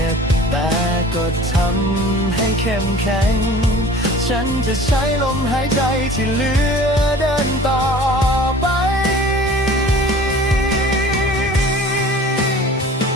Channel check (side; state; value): both; normal; correlation 0.45